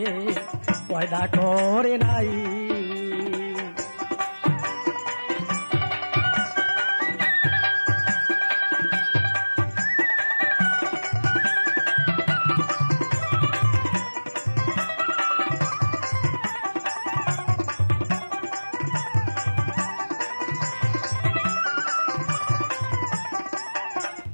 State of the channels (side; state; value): both; inverted; correlation -1.00